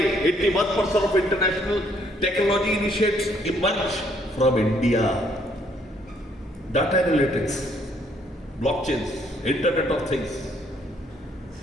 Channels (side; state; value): both; normal; correlation 0.67